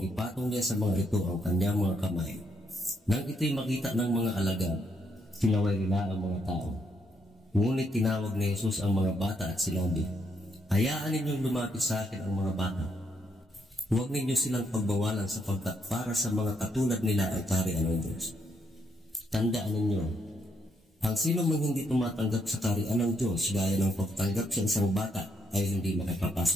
ipatong niya sa mga ito ang kanyang mga kamay. Nang ito'y makita ng mga alagad, sinaway nila ang mga tao. Ngunit tinawag ni Jesus ang mga bata at sinabi, hayaan ninyong lumapit sa akin ang mga bata. Huwag ninyo silang pagbawalan sapagkat para sa mga katulad nila ang kaharian ng Diyos. Tandaan ninyo, ang sino mang hindi tumatanggap sa kaharian ng Diyos gaya ng pagtanggap sa isang bata ay hindi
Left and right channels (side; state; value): both; normal; correlation 0.75